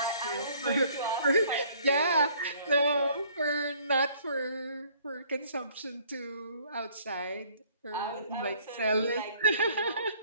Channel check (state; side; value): inverted; both; correlation -0.59